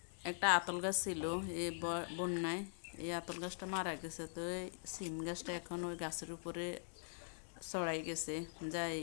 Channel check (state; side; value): silent; right; digital silence